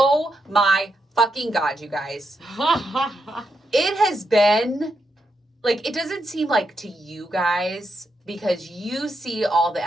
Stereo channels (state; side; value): normal; both; correlation 0.83